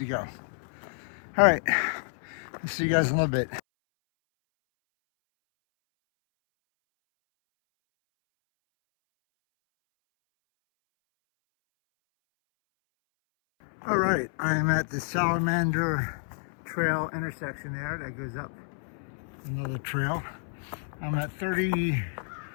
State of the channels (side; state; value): right; silent; 58 dB below the other